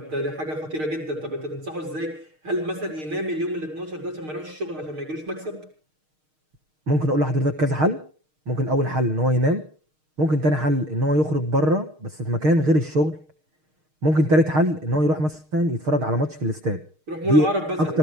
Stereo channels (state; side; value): late; left; 6.5 ms